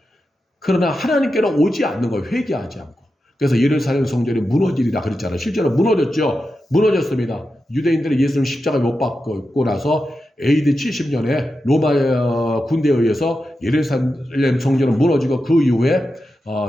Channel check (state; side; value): normal; both; correlation 0.90